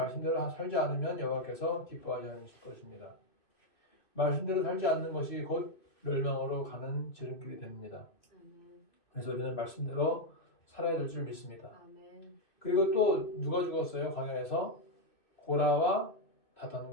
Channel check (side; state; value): right; late; 2.6 ms